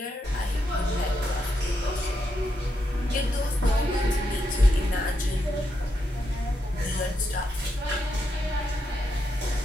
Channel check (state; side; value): normal; both; correlation 0.82